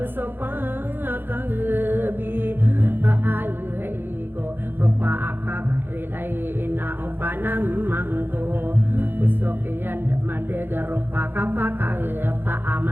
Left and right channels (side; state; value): left; late; 0.10 ms